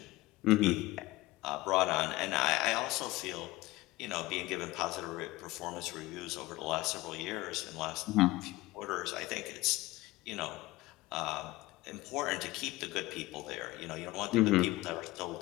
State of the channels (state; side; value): quieter; right; 19.3 dB